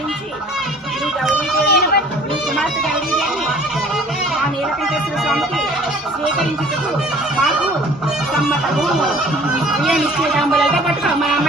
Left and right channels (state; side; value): normal; both; correlation 0.51